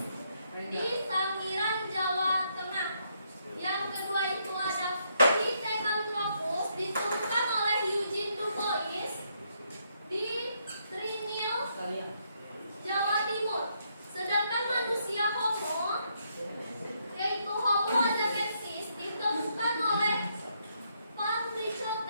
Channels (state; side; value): inverted; both; correlation -0.75